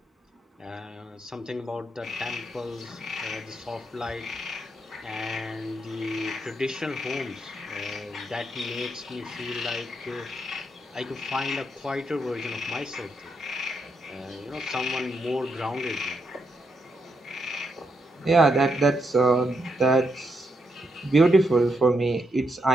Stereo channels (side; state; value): both; normal; correlation 0.80